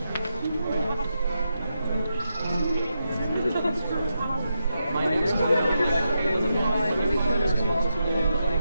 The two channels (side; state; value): both; inverted; correlation -0.86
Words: My next one would be like, okay, let me find a responsible,